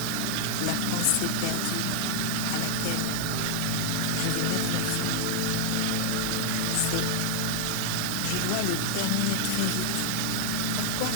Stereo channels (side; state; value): both; different; correlation 0.00